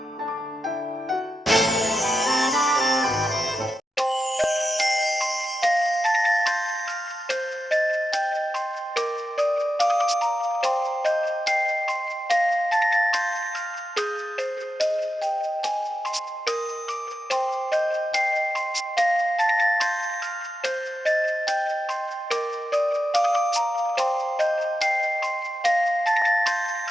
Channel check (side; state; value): both; normal; correlation 0.88